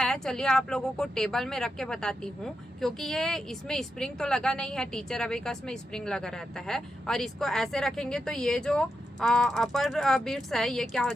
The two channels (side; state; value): both; normal; correlation 0.86